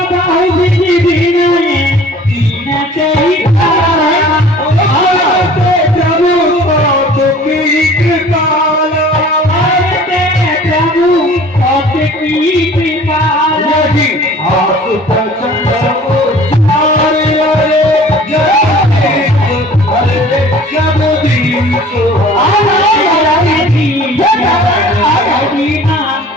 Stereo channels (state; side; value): normal; both; correlation 0.48